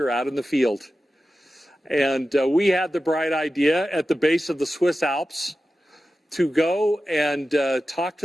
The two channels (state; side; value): normal; both; correlation 0.93